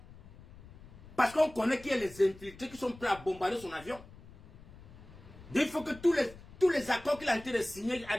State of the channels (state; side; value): noise; left; rumble, 19 dB below the sound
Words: Parce qu'on connaît qu'il y a les infiltrés qui sont prêts à bombarder son avion. Il faut que tous les accords qu'il a été de signer,